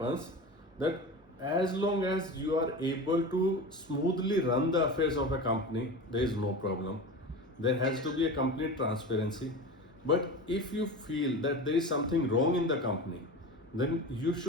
that as long as you are able to smoothly run the affairs of a company, there is no problem. There has to be a complete transparency. But if you feel that there is something wrong in the company, then you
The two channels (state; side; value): normal; both; correlation 0.29